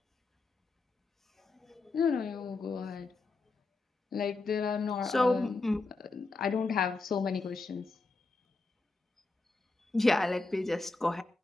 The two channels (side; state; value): right; quieter; 3.6 dB